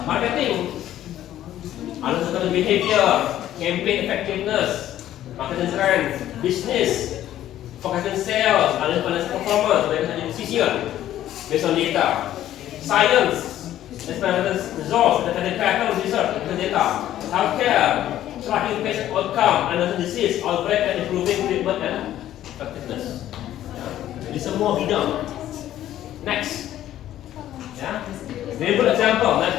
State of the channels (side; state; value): right; quieter; 12.6 dB